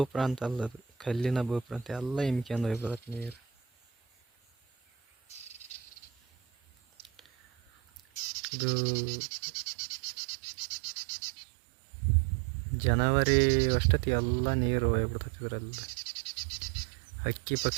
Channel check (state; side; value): drops out; left; at 8.2 s